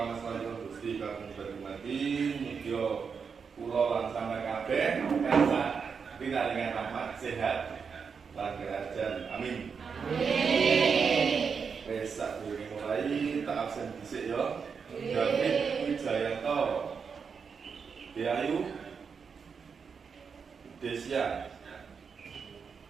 asmanipun Gusti kagem berhormati mugia kula lan sampeyan kabeh tansah pinaringan rahmat sehat lan kerajaan. Amin. Wis sadurunge mulai tak absen dhisik ya. David Wijayanto, Deayu, Desya,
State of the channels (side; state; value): left; quieter; 5.9 dB